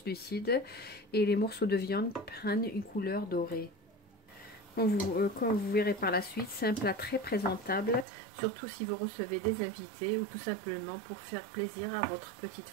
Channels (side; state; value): left; drops out; at 8.1 s